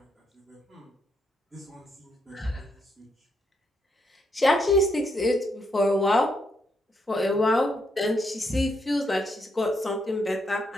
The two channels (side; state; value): both; normal; correlation 0.77